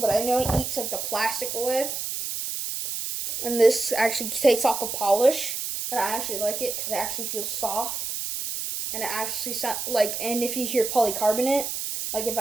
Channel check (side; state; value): right; noise; hiss, 4 dB below the sound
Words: but I know it eats like the plastic away. And this actually takes off the polish, and I actually like it because it actually feels soft, and it actually sounds like. And if you hear polycarbonate, like if